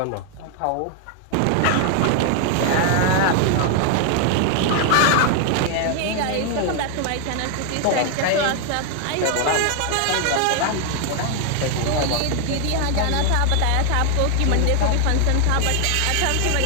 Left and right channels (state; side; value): different; both; correlation 0.00